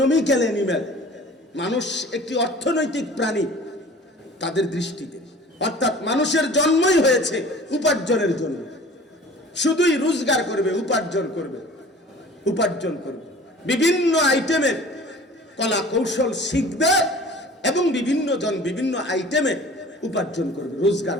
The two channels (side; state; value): both; normal; correlation 0.45